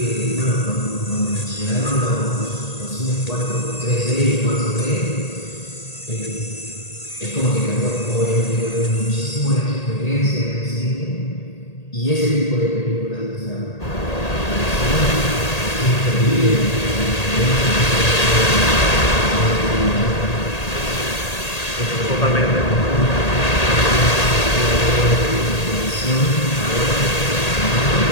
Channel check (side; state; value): right; late; 1.8 ms